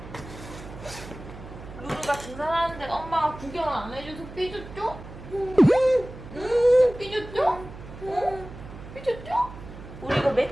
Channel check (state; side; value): noise; right; hum, 14 dB below the sound